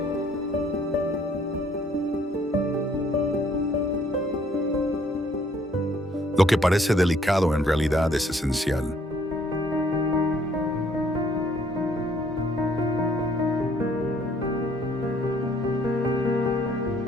Lo que parece delicado en realidad es esencial.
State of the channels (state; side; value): normal; both; correlation 0.63